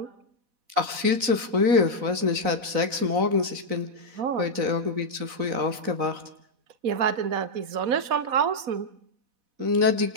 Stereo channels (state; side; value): late; left; 3.9 ms